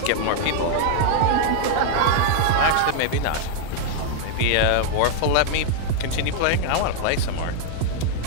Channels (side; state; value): both; different; correlation -0.01